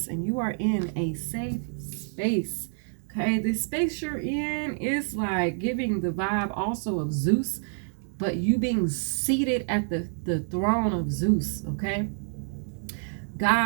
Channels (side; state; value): left; silent; digital silence